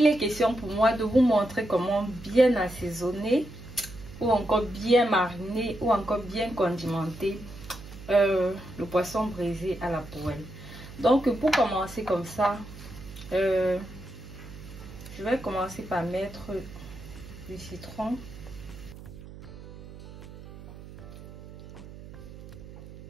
est question pour moi de vous montrer comment bien assaisonner ou encore bien mariner ou encore bien condimenter le poisson braisé à la poêle. Donc pour commencer comme ça, je vais commencer par mettre du citron.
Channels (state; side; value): noise; right; hum, 15 dB below the sound